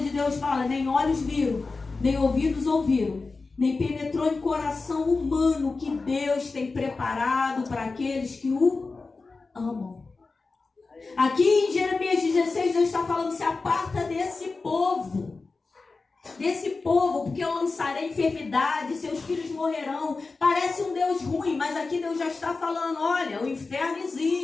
Deus fala: nem olhos viram, nem ouvidos ouviram, nem penetrou em coração humano o que Deus tem preparado para aqueles que o amam. Aqui em Jeremias 16, Deus está falando: se aparta desse povo, porque eu lançarei enfermidade, seus filhos morrerão. Parece um Deus ruim, mas aqui Deus já está falando: olha, o inferno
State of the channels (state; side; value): quieter; right; 3.9 dB